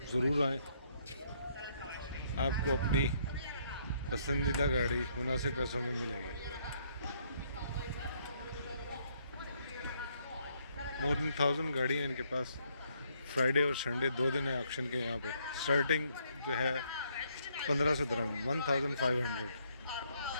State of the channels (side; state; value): both; inverted; correlation -0.70